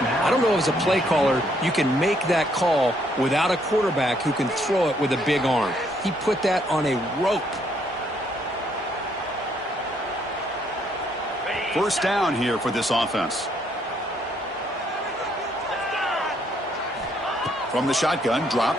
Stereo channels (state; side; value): normal; both; correlation 0.70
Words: don't know as a play caller, you can make that call without a quarterback who can throw it with a big arm. He put that on a rope. First down here for this offense. From the shotgun,